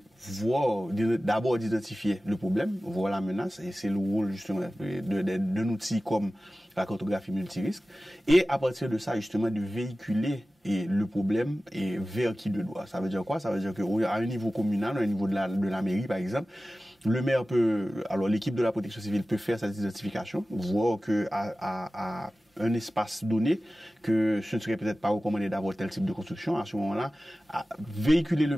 voir, d'abord d'identifier le problème, voir la menace, et c'est le rôle, justement, d'un outil comme la cartographie multirisque, et à partir de ça, justement, de véhiculer le problème vers qui de doigt. Ça veut dire quoi? Ça veut dire qu'à un niveau communal, à un niveau de la mairie, par exemple, le maire alors l'équipe de la protection civile peut faire cette identification, voir qu'à un espace donné, que ce ne serait peut-être pas recommandé d'avoir tel type de construction, à ce moment-là, véhiculer le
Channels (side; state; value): both; normal; correlation 0.96